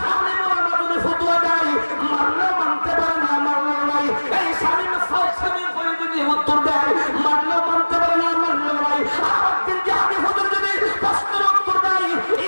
আলেম ওলামা যদি ফতোয়া দেয়, মানলেও মানতে পারে না, মানলেও নাই। এই স্বামী করে যদি উত্তর দেয়, মানলেও মানতে পারে না, মানলেও নাই। আর একদিন জিহাদি হুজুর যদি প্রশ্নের উত্তর দেয়,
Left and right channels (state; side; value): inverted; both; correlation -1.00